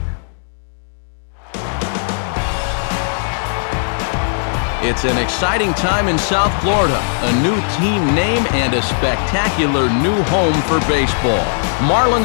It's an exciting time in South Florida. A new team name and a spectacular new home for baseball.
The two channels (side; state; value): right; silent; digital silence